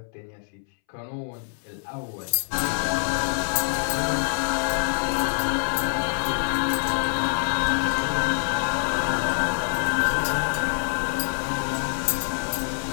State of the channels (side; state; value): right; silent; 61 dB below the other